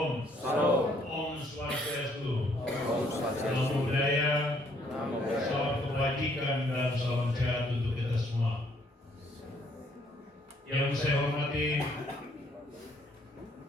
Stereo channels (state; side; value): normal; both; correlation 0.66